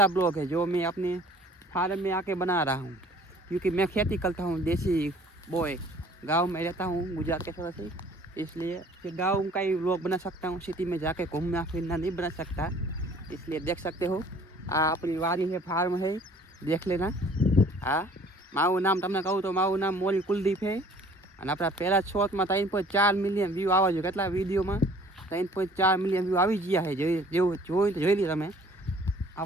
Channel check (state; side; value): normal; both; correlation 0.53